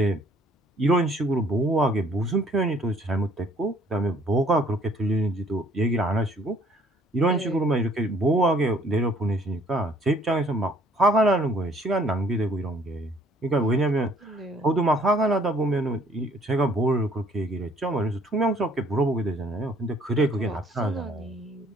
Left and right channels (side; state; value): both; normal; correlation 0.60